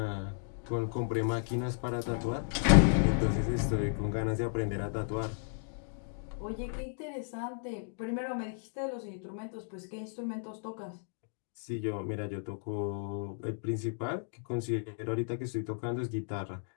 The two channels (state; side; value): silent; right; digital silence